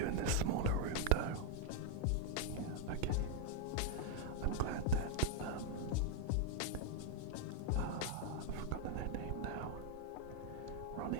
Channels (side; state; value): both; different; correlation 0.00